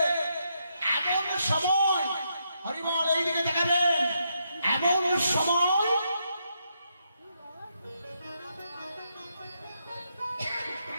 এমন সময়, হরিবল এইদিকে দেখাবেন, এমন সময়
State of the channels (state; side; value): inverted; both; correlation -0.79